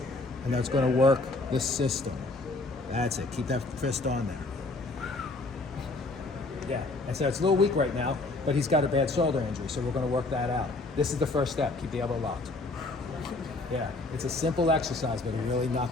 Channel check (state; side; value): quieter; right; 3.2 dB